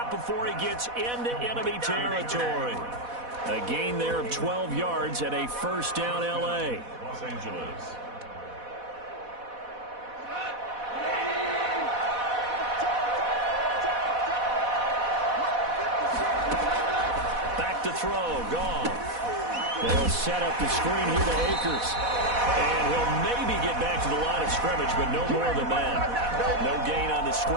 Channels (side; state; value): left; late; 4.1 ms